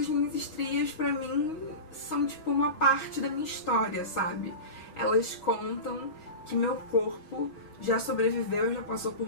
minhas estrias, pra mim, são tipo uma parte da minha história, sabe? Elas contam que meu corpo já sobreviveu, já passou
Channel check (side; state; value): right; late; 6.3 ms